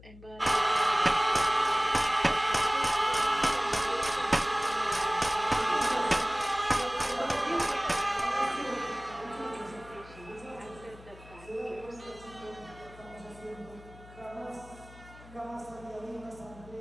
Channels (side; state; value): left; noise; hum, 20 dB below the sound